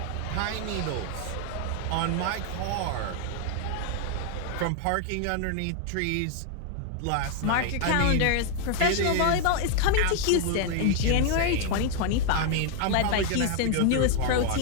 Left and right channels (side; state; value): both; different; correlation 0.00